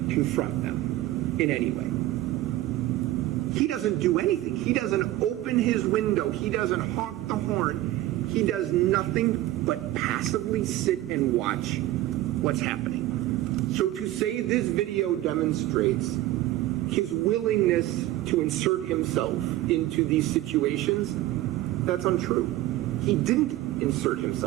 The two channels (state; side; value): quieter; left; 15.4 dB